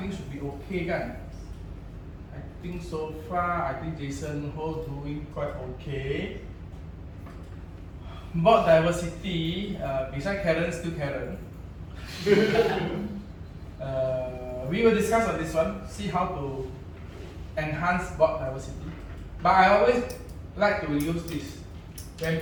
should be okay kan. I think so far. I think Jason Ho doing quite okay. Board diversity. Besides Karen, still Karen. We will discuss on this one. See how to enhance board diversity. But I always like to use this. When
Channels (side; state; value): both; identical; correlation 1.00